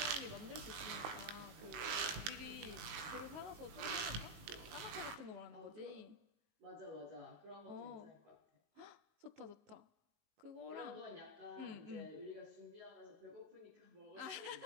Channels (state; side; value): late; left; 19 ms